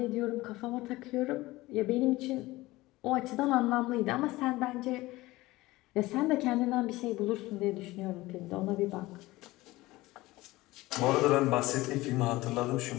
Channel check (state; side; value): quieter; right; 19.2 dB